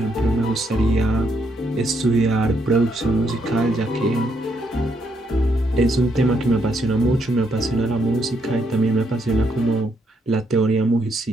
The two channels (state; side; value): normal; both; correlation 0.76